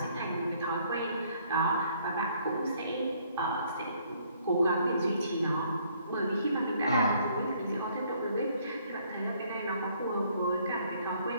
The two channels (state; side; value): inverted; both; correlation -0.65